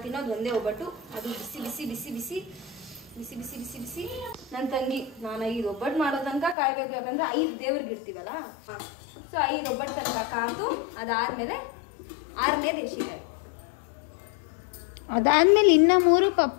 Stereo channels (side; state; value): right; drops out; at 6.6 s